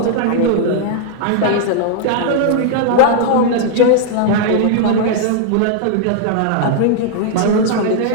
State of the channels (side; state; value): both; different; correlation -0.01